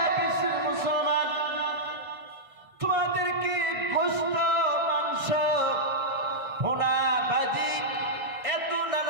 বিশ্বের মুসলমান, তোমাদেরকে গোশত, মাংস, ভুনা, ভাজি, এত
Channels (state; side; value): late; left; 1.6 ms